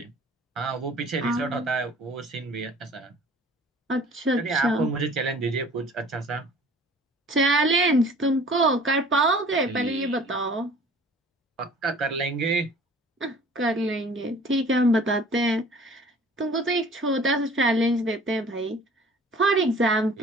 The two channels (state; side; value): normal; both; correlation 0.49